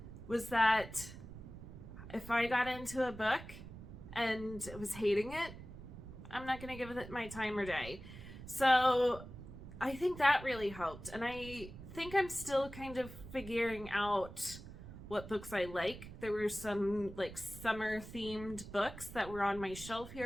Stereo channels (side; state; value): right; noise; rumble, 13 dB below the sound